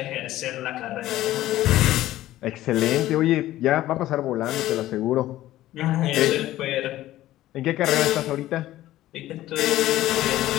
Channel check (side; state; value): right; quieter; 14.8 dB